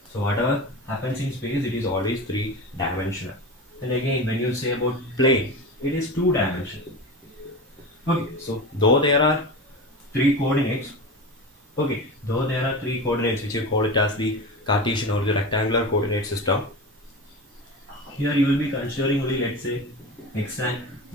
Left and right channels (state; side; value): normal; both; correlation 0.27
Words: So whatever happens in space, it is always three-dimensional. And again, when you say about plane, it is two-dimensional. Okay, so though there are three coordinates, okay, though there are three coordinates, which you call it as the Cartesian or the rectangular coordinate system, here you will be considering only, let's say, x and